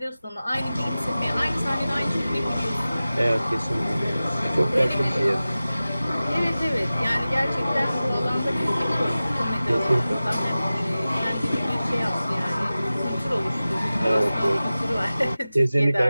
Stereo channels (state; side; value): inverted; both; correlation -0.96